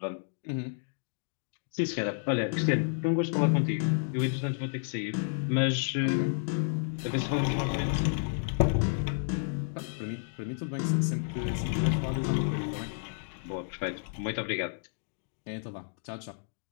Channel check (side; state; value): right; silent; digital silence